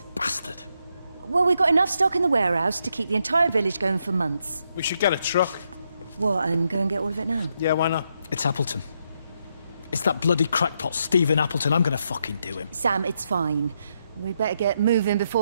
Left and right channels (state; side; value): inverted; both; correlation -0.79